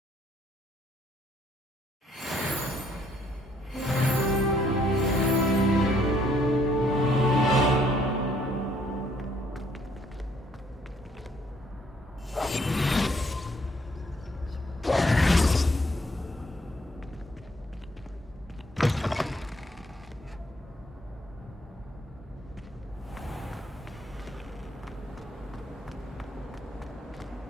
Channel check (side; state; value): both; normal; correlation 0.67